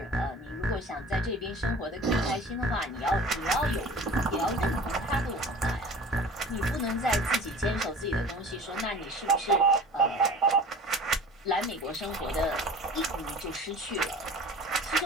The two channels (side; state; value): both; normal; correlation 0.42